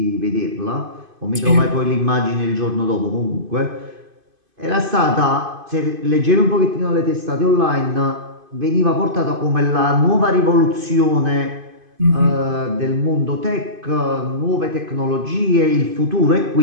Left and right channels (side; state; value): left; late; 2.5 ms